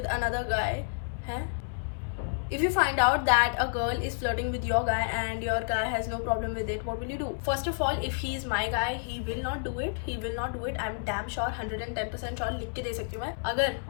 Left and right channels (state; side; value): silent; right; 58 dB below the other